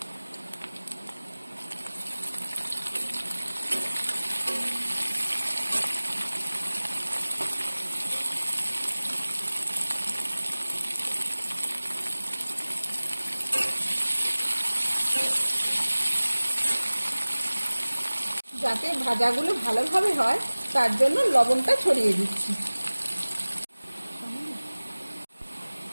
যাতে ভাজাগুলো ভালোভাবে হয় তার জন্য লবণটা ছড়িয়ে দিচ্ছি।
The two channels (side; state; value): both; inverted; correlation -1.00